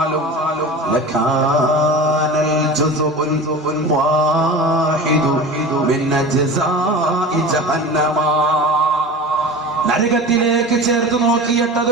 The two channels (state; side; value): normal; both; correlation 0.33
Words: ലകാനൽ ജുസുഉൽ വാഹിദു മിൻ അജ്സാഇ ജഹന്നമ, നരകത്തിലേക്ക് ചേർത്ത് നോക്കിയിട്ട്